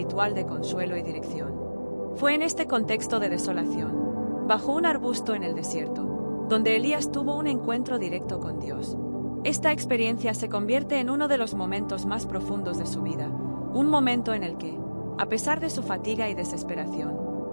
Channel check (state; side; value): inverted; both; correlation -1.00